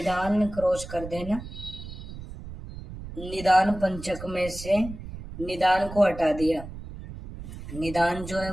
क्रॉस कर देना। निदान पंचक में से निदान को हटा दिया। निदान जो है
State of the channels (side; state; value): right; noise; rumble, 12 dB below the sound